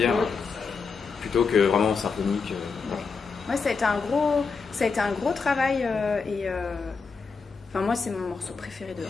plutôt que vraiment symphonique. Ouais, ça a été un gros travail enfin moi c'est mon morceau préféré de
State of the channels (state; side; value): quieter; right; 5.0 dB